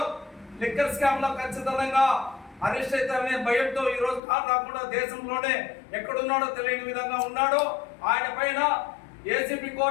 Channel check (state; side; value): drops out; right; at 4.2 s